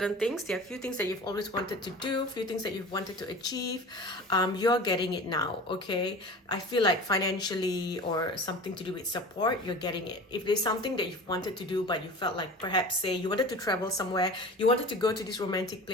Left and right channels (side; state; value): both; normal; correlation 0.37